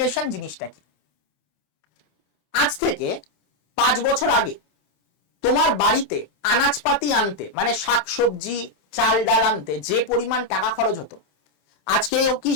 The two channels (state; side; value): late; right; 27 ms